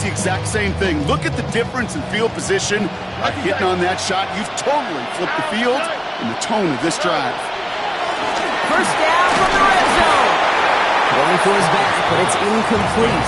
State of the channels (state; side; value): identical; both; correlation 1.00